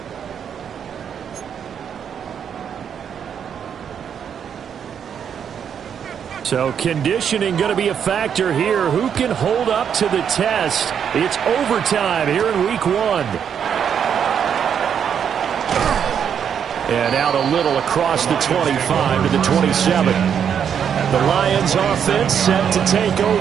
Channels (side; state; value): left; quieter; 8.0 dB